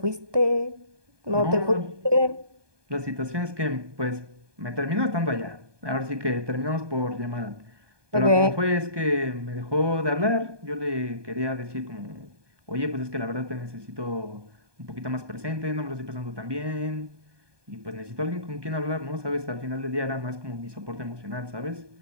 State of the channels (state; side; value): late; left; 1.2 ms